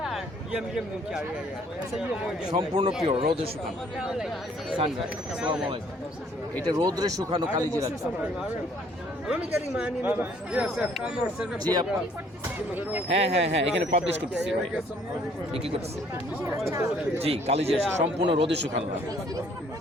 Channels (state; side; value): normal; both; correlation 0.61